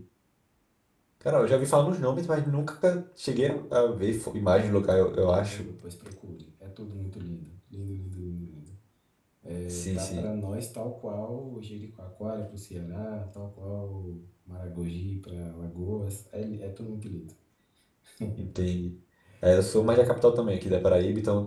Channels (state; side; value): identical; both; correlation 1.00